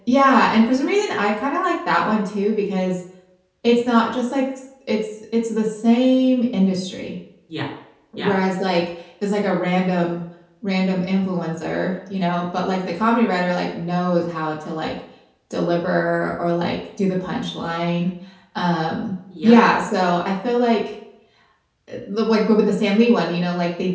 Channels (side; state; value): both; identical; correlation 1.00